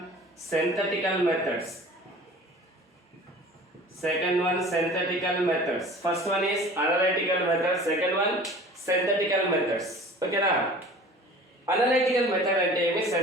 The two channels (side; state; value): both; normal; correlation 0.43